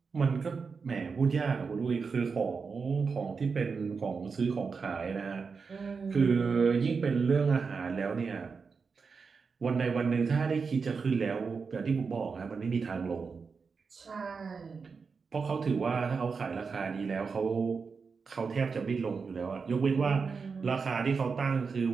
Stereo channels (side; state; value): left; quieter; 5.2 dB